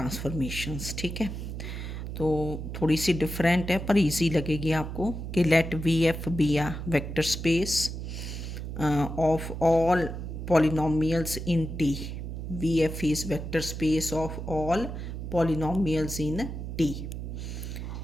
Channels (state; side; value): noise; right; hum, 6 dB below the sound